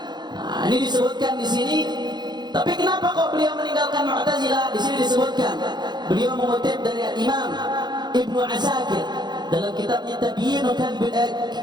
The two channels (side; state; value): left; late; 0.21 ms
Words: Nah, ini disebutkan di sini. Tapi kenapa kok beliau meninggalkan Mu'tazilah? Di sini disebutkan beliau mengutip dari Imam Ibnu Asakir dalam kitabnya Tabyin